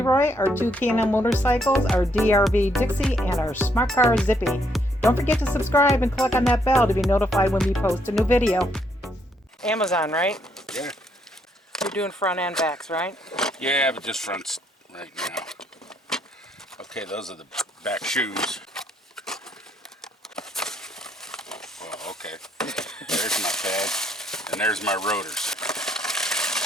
our two K&N motorcycles, our DRV Dixie, and our Smart Car Zippy. Don't forget to subscribe and click on that bell to be notified when we post a new video. Amazon, right? Yeah. You're doing front and backs, right? Yeah, but just fronts right now. Okay, those are the back shoes. Well, okay. There's my pad, and there's my rotors.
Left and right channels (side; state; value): both; normal; correlation 0.72